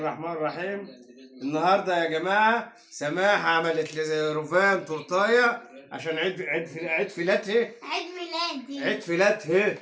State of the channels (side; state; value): both; identical; correlation 1.00